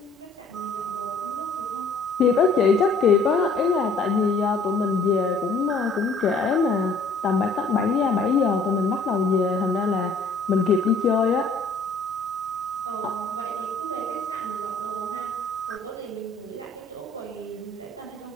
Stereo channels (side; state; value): right; quieter; 3.6 dB